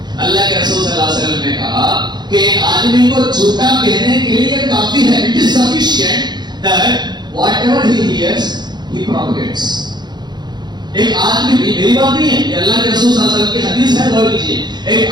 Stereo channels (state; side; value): late; left; 0.21 ms